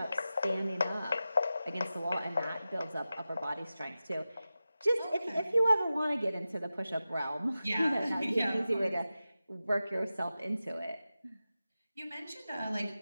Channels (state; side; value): inverted; both; correlation -0.94